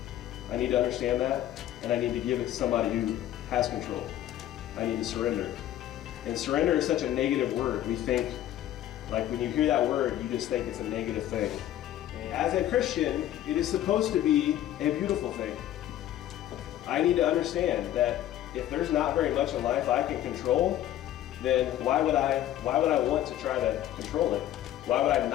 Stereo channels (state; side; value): quieter; right; 12.6 dB